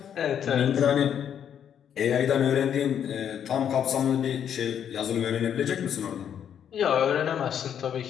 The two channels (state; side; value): quieter; right; 8.9 dB